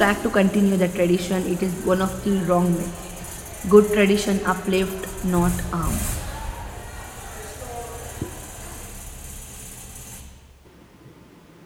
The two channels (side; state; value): both; identical; correlation 1.00